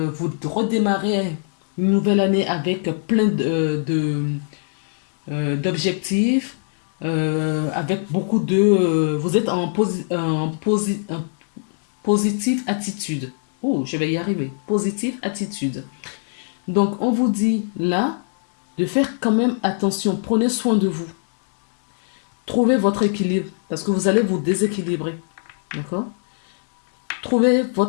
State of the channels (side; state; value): right; silent; digital silence